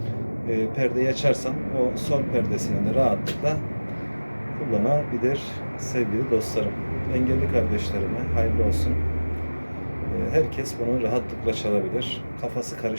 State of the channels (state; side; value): inverted; both; correlation -1.00